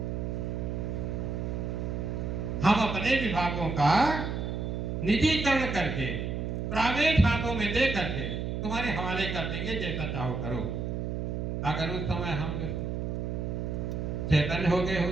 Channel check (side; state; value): right; noise; hum, 3 dB below the sound